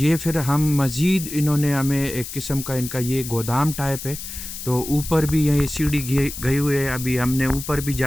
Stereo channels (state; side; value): noise; left; hiss, 9 dB below the sound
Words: پھر ہم مزید انہوں نے ہمیں ایک قسم کا ان کا یہ گودام ٹائپ ہے تو اوپر بھی یہ سیڑھی گئی ہوئی ہے. ابھی ہم نے اوپر بھی